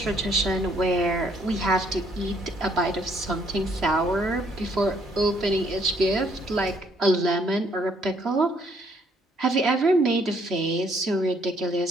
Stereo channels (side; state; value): both; normal; correlation 0.67